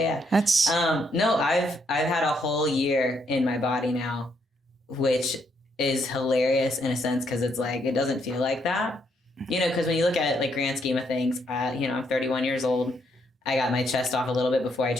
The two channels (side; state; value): both; normal; correlation 0.74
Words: That's no, I've had a whole year in my body now, which is hilarious in a sense because it's like it doesn't feel like that, you know. Because when you look at it, like grand scheme of things, I'm 31 years old. I got my chest off a little bit before I